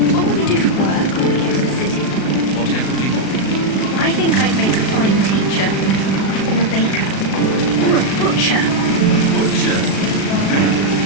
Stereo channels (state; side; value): late; right; 36 ms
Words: What will we do for work when we get to the city? Whatever we want. I think I'd make a fine teacher, or a baker, or a butcher. Butcher?